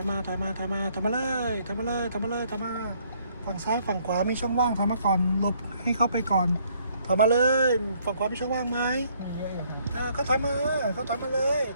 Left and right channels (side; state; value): both; inverted; correlation -0.66